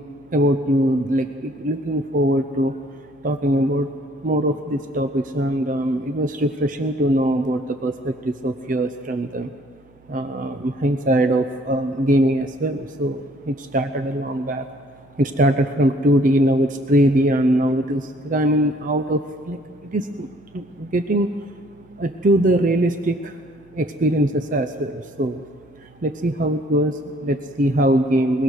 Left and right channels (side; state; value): right; noise; hum, 30 dB below the sound